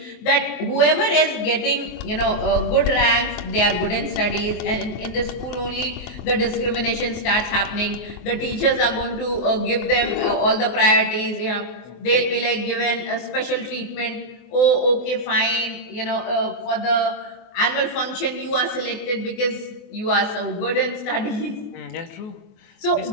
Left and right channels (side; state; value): right; late; 24 ms